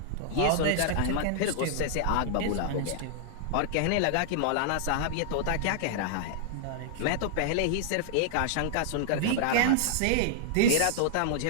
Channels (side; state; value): both; different; correlation -0.01